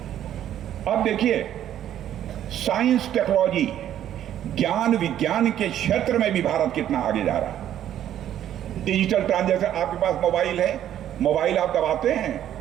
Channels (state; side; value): quieter; left; 11.1 dB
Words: अब देखिए, साइंस, टेक्नोलॉजी, ज्ञान विज्ञान के क्षेत्र में भी भारत कितना आगे जा रहा है। डिजिटल ट्रांजैक्शन, आपके पास मोबाइल है, मोबाइल आप दबाते हैं,